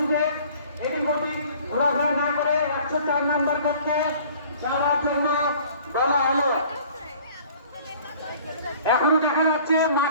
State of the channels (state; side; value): inverted; both; correlation -0.51